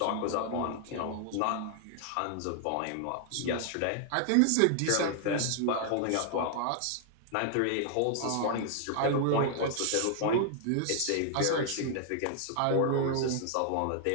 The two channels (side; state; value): both; different; correlation 0.00